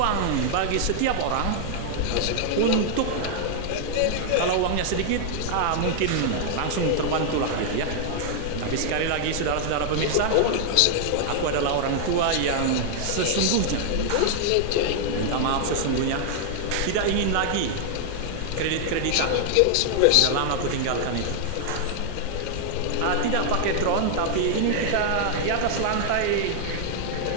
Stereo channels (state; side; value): different; both; correlation 0.00